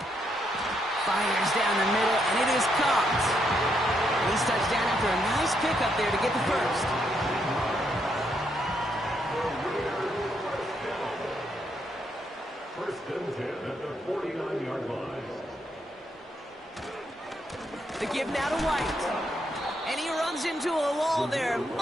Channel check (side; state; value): both; normal; correlation 0.77